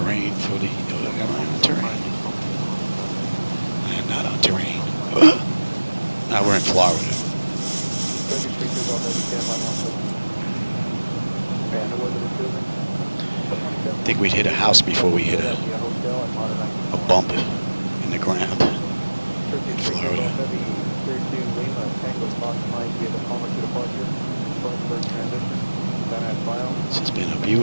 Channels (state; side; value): inverted; both; correlation -1.00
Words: for the... am I on terrain? I am not on terrain. Now we're in Florida. I think we'd hit a house before we hit a bump in the ground in Florida. This has been a